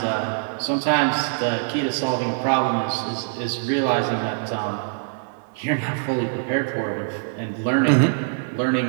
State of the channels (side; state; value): left; silent; 60 dB below the other